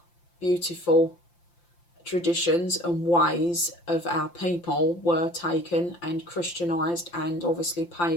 beautiful traditions and ways of our people were taken and Christianized, and obviously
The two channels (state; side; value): late; right; 5.8 ms